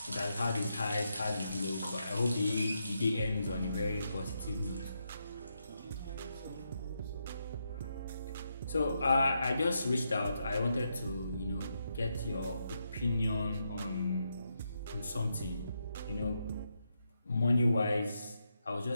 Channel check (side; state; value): both; inverted; correlation -0.82